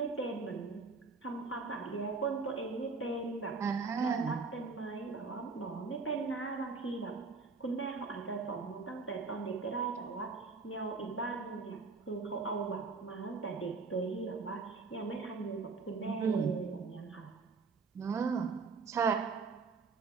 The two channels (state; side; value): quieter; left; 4.4 dB